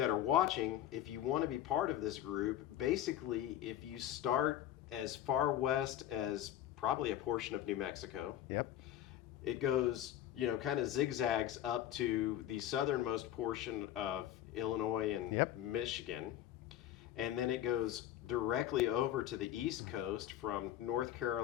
are watching, if you want to be part of this group, basically, if you start as far west as probably a portion of New Mexico, it goes, you know, kind of zigzags up to the southernmost portion of Illinois and Michigan. And then it goes directly over to the East Coast from North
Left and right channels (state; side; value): quieter; right; 12.1 dB